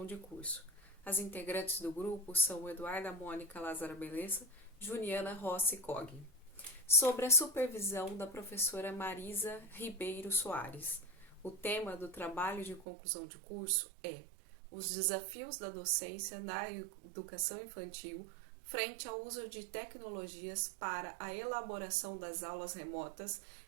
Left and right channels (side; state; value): left; drops out; at 12.9 s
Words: de curso. As integrantes do grupo são Eduarda Mônica Lázara Belessa, Juliana Rossi Cogni. Sobre a supervisão da professora Marisa Ribeiro Soares. O tema do trabalho de conclusão de curso é os desafios da docência na educação infantil frente ao uso de tecnologias para a elaboração das aulas remotas